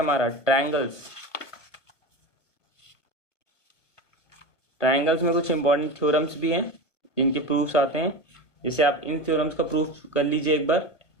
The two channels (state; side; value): late; right; 1.1 ms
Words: ट्रायंगल्स। ट्रायंगल्स में कुछ इंपॉर्टेंट थ्योरम्स भी हैं जिनके प्रूफ्स आते हैं। जैसे आप इन थ्योरम्स का प्रूफ कर लीजिए एक बार।